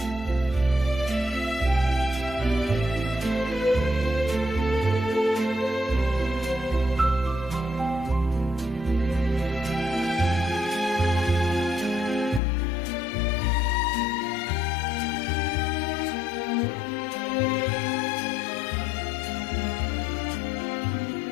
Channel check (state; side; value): drops out; right; at 12.4 s